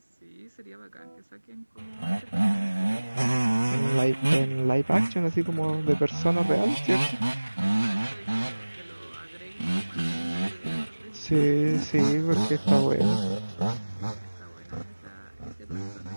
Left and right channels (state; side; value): inverted; both; correlation -1.00